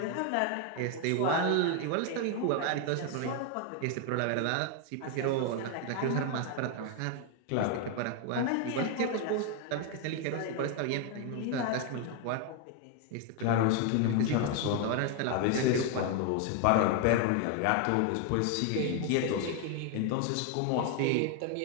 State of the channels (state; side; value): different; both; correlation 0.00